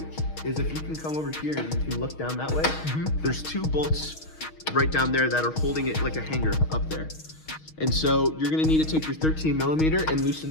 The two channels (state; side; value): late; right; 6.4 ms